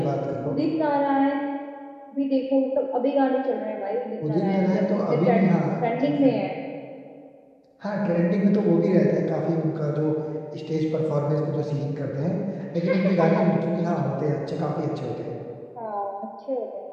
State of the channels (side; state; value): both; identical; correlation 1.00